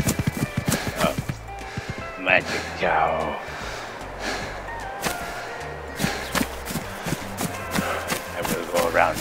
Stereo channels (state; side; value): identical; both; correlation 1.00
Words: Oh, magic cow. I will go around.